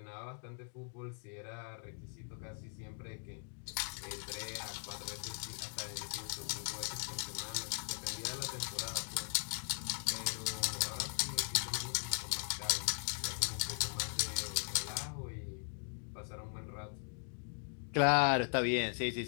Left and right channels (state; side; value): silent; right; 51 dB below the other